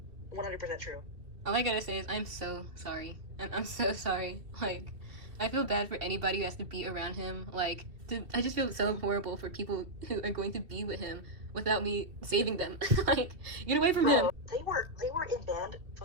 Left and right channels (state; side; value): late; left; 2.7 ms